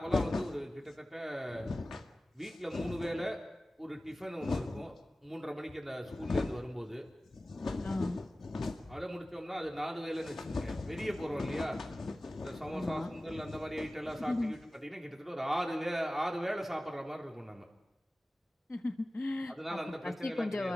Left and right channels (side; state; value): both; normal; correlation 0.96